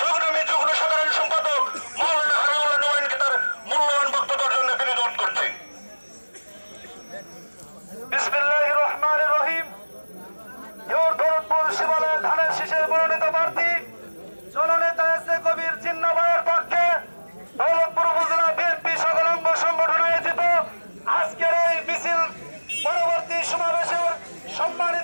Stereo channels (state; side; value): inverted; both; correlation -1.00